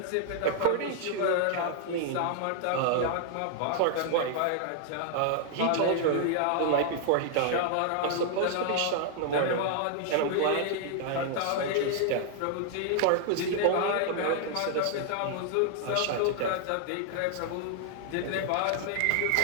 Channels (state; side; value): different; both; correlation 0.00